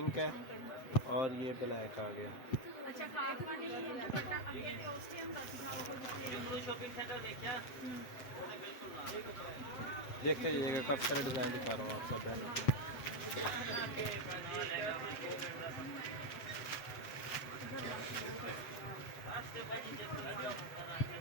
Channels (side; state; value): right; late; 7.7 ms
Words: है और ये ब्लैक आ गया। देखते जाइएगा, काफ़ी सारे डिज़ाइन दिखा रहा हूँ आप सब बहनों को।